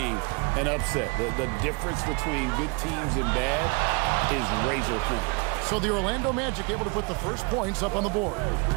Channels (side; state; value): left; quieter; 29.7 dB